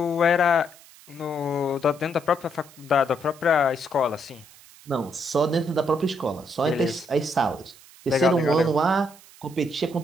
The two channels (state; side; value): noise; right; hiss, 23 dB below the sound